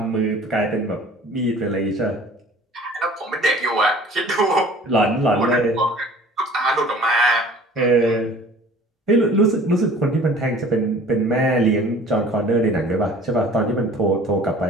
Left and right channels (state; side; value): normal; both; correlation 0.48